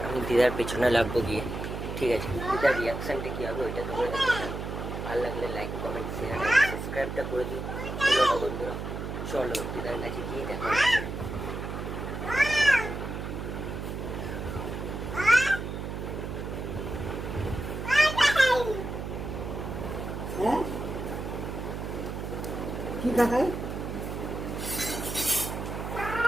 আমি দিদার পেছনে লাগবো গিয়ে, ঠিক আছে? দিদার রিয়াকশানটা কী হবে ওইটা তোমরা দেখে নাও। ভালো লাগলে লাইক কমেন্ট শেয়ার অ্যান্ড সাবস্ক্রাইবটা করে দিও বন্ধুরা। চলো দিদার কাছে গিয়ে দেখা হচ্ছে। কি দেখায়?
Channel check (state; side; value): noise; right; hum, 6 dB below the sound